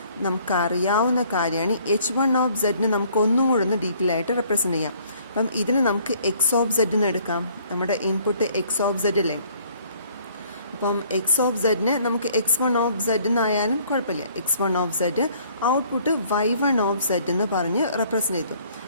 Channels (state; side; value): inverted; both; correlation -0.60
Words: നമുക്കറിയാവുന്ന കാര്യമാണ് h1 ഓഫ് സെഡിനെ നമുക്ക് ഒന്നും കൂടെ ഒന്ന് ഡീറ്റെയിൽ ആയിട്ട് റെപ്രസെൻ്റ് ചെയ്യാം. അപ്പം ഇതിന് നമുക്ക് എക്സ് ഓഫ് സെഡ് എന്ന് എടുക്കാം. നമ്മുടെ ഇൻപുട്ട് എക്സ് ഓഫ് സെഡ് അല്ലേ. അപ്പം എക്സ് ഓഫ് സെഡിനെ നമുക്ക് x1 ഓഫ് സെഡ് എന്നായാലും കുഴപ്പമില്ല. x1 of zed output y1 of Z എന്ന് പറഞ്ഞ് റെപ്രസെൻ്റ് ചെയ്തു.